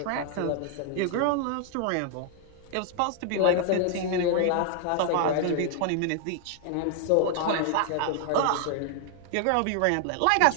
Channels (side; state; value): both; different; correlation 0.00